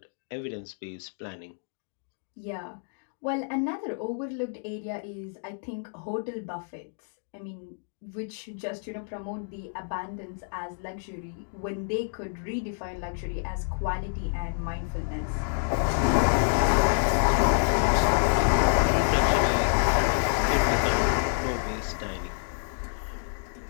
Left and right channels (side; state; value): right; silent; digital silence